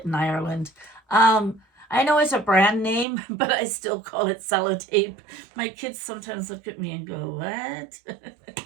in Ireland. I know it's a brand name, but I still call it sellotape. My kids sometimes look at me and go, what?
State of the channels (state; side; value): drops out; left; at 3.1 s